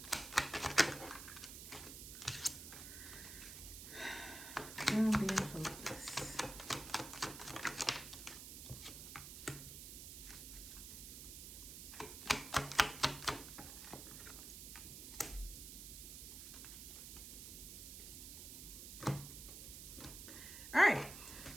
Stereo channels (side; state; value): right; noise; hiss, 10 dB below the sound